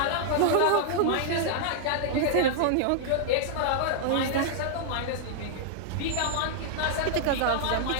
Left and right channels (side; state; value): both; different; correlation -0.01